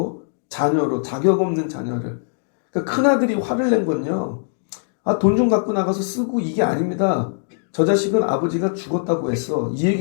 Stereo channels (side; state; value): right; silent; digital silence